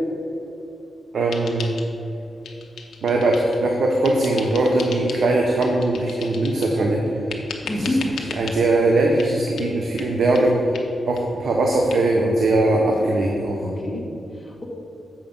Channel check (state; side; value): normal; both; correlation 0.82